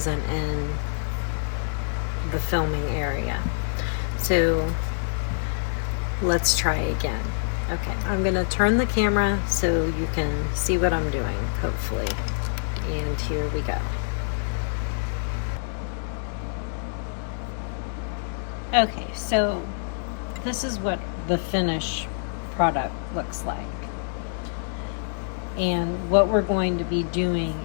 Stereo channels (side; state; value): right; silent; digital silence